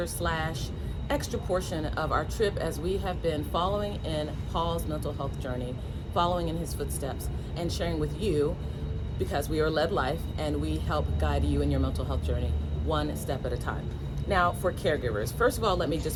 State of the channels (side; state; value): both; identical; correlation 1.00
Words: slash extra portion of our trip as we have been following in Paul's mental health journey, following in his footsteps, and sharing with you because we are led life and we help guide you in your mental health journey one step at a time. Now, for caregivers, first of all, let me